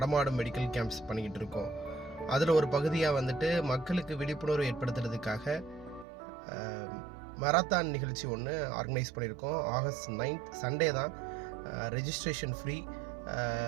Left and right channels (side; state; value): left; drops out; at 6.1 s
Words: மெடிக்கல் கேம்ப்ஸ் பண்ணிக்கிட்டு இருக்கோம். அதில் ஒரு பகுதியாக வந்துட்டு மக்களுக்கு விழிப்புணர்வு ஏற்படுத்துறதுக்காக மராத்தான் நிகழ்ச்சி ஒன்று ஆர்கனைஸ் பண்ணியிருக்கோம். ஆகஸ்ட் 9th சண்டே தான். Registration free.